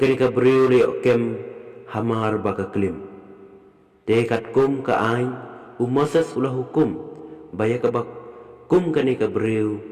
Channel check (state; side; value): identical; both; correlation 1.00